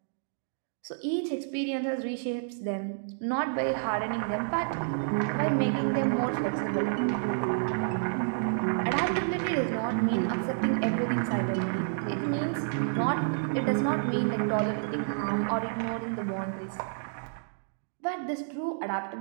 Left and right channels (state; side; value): silent; left; digital silence